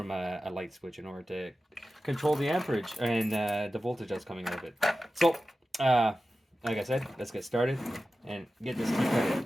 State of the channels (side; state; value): both; normal; correlation 0.94